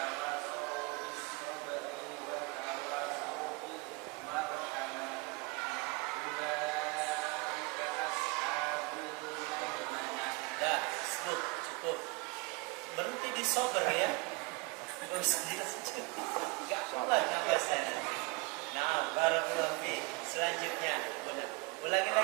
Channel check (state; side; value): quieter; left; 27.3 dB